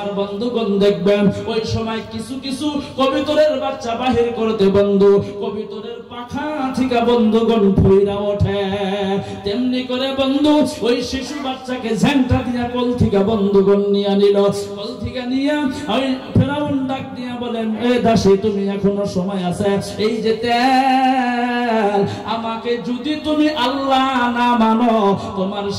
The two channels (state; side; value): identical; both; correlation 1.00